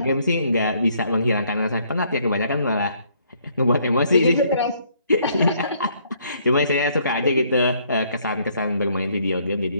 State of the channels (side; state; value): both; inverted; correlation -0.66